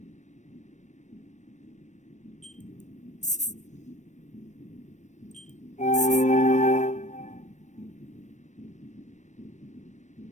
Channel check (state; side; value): late; right; 0.34 ms